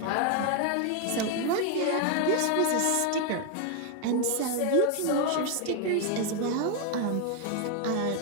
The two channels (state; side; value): different; both; correlation 0.01